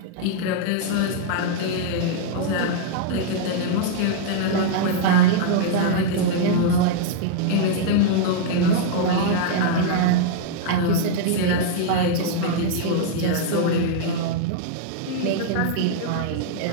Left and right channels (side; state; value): both; different; correlation -0.01